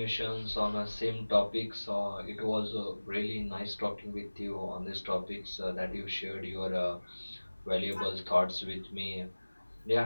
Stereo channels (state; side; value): inverted; both; correlation -1.00